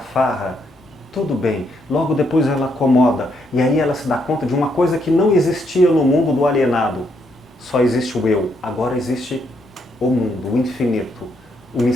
tudo bem. Logo depois ela acomoda. E aí ela se dá conta de uma coisa que não existia no mundo do alienado. Só existe o eu. Agora existe o mundo, o infinito, o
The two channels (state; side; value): normal; both; correlation 0.75